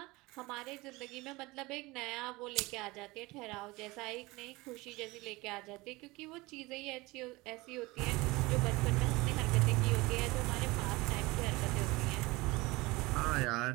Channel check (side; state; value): left; quieter; 22.2 dB